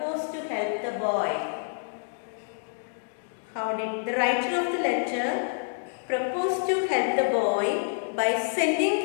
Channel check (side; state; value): right; silent; digital silence